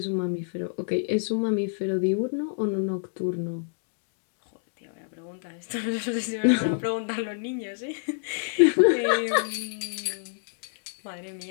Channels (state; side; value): silent; right; digital silence